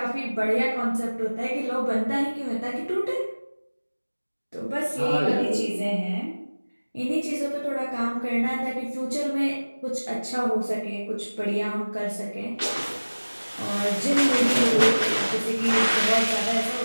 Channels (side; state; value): both; inverted; correlation -1.00